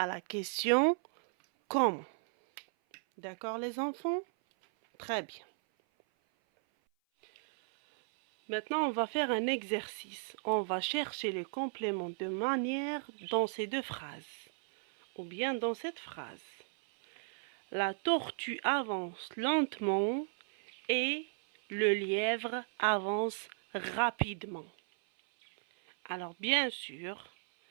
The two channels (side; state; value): left; silent; 54 dB below the other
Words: la question comment. D'accord les enfants? Très bien. Maintenant, on va faire un exercice. On va chercher les compléments de manière dans ces deux phrases. Ou bien dans cette phrase. La tortue avance lentement et le lièvre avance rapidement. Alors, bien sûr,